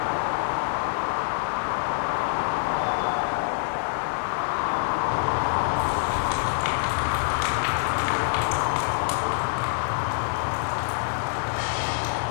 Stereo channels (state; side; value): silent; right; 61 dB below the other